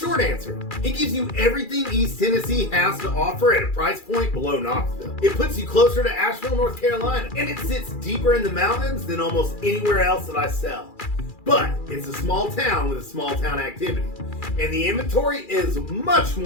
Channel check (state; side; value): late; right; 2.4 ms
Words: short answer. It gives you everything East Tennessee has to offer at a price point below Knoxville. It puts you closer to Asheville, North Carolina, and it sits deeper in the mountains than almost anywhere else that I sell. But it's a small town with a small town activity, and the inventory is much